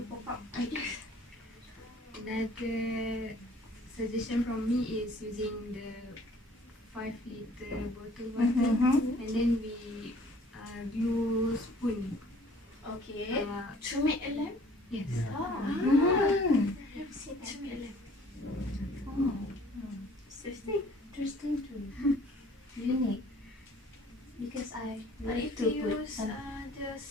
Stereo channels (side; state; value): both; normal; correlation 0.55